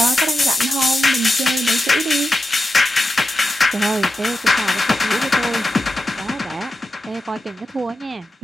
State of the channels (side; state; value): both; normal; correlation 0.90